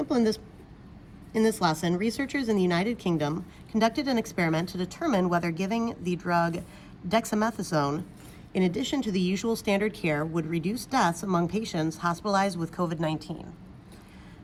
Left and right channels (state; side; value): identical; both; correlation 1.00